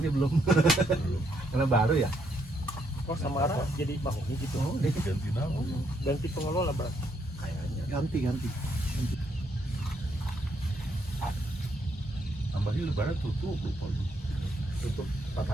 belum. Karena baru ya. Oh, Samara jadi mahoni gitu. Oh, Ganti nama. Ganti pengelola berarti. kayaknya. Ganti. Tambahnya lebaran tutup lupa. Tutup 4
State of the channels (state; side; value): normal; both; correlation 0.74